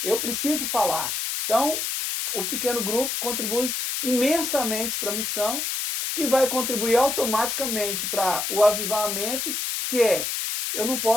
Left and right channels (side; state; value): left; noise; hiss, 2 dB below the sound